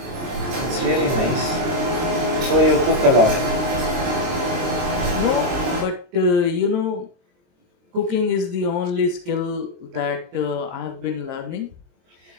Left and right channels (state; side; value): late; left; 23 ms